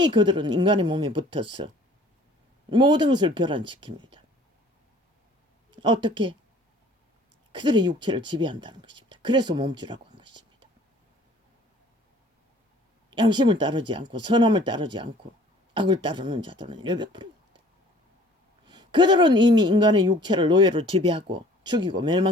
그들은 인간의 몸에 붙어서 모든 것을 교란시킵니다. 어떻게? 그들의 육체를 지배한다는 것입니다. 그래서 몸주라고 한 것입니다. 양심을 따르지 않고 선함을 따르지 않고 악을 따르는 자들은 100%입니다. 그들은 이미 인간의 육체를 노예로 지배하고 죽이고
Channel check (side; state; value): both; normal; correlation 0.52